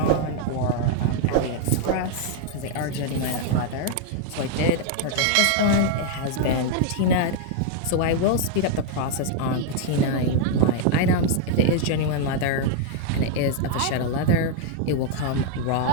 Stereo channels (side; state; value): both; different; correlation 0.00